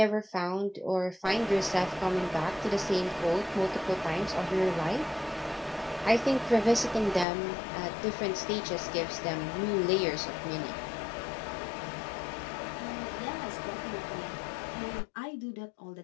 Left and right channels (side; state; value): right; drops out; at 7.2 s